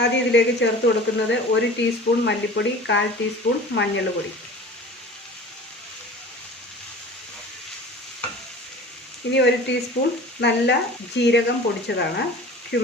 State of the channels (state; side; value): normal; both; correlation 0.41